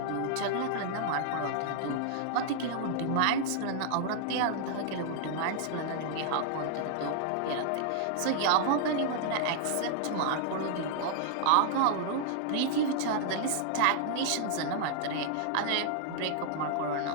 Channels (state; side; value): different; both; correlation -0.01